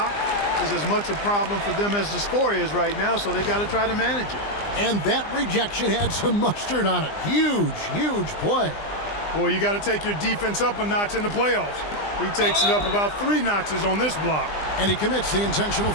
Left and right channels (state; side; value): late; right; 20 ms